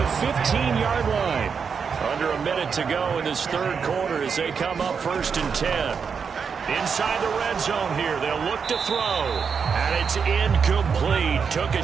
15-yard line. Under a minute to go in this 3rd quarter as they come up 1st and 10. Inside the red zone here, they'll look to throw. And it's incomplete. Took a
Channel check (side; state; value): left; quieter; 6.1 dB